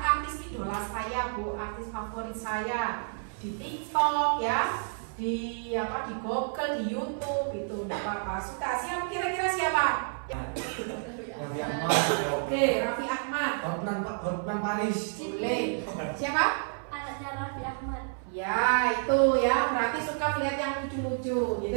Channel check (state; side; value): silent; left; 58 dB below the other